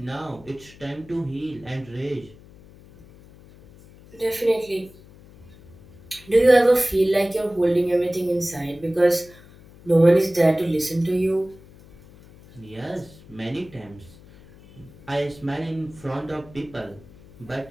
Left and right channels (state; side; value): noise; left; hum, 23 dB below the sound